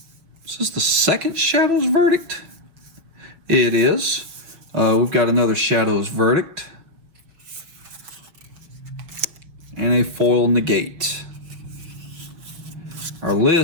Is this the second Shadow's Verdict? It is. We've got another Shadow's Verdict, and a foil Negate. Our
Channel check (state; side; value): late; left; 6.1 ms